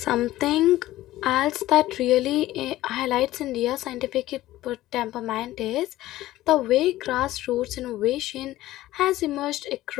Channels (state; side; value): quieter; right; 15.6 dB